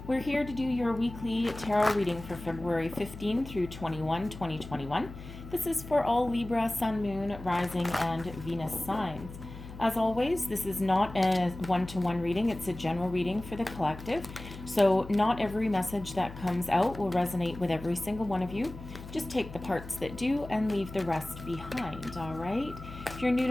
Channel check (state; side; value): noise; left; hum, 13 dB below the sound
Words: We're here to do your weekly tarot reading for February 15 through 21, 2021. This is for all Libra, Sun, Moon, Rising, and Venus signs. As always, this is not a one-to-one reading. It's a general reading for the collective. So not every message that comes out will resonate with every single one of you. Just take the parts that do and leave the rest behind, all right? If you're new